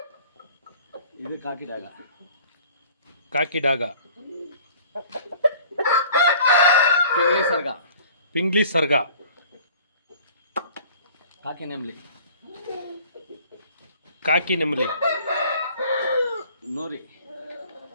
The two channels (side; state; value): both; inverted; correlation -0.49